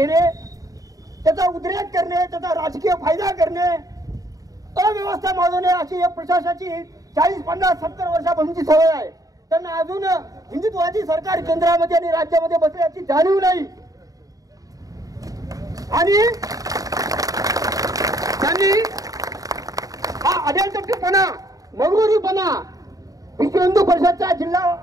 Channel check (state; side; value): late; left; 0.17 ms